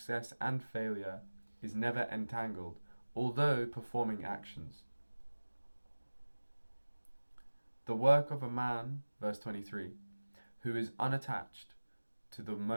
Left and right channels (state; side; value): inverted; both; correlation -1.00